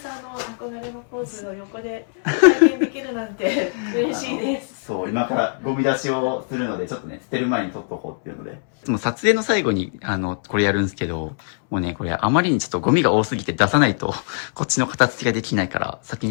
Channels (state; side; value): silent; right; digital silence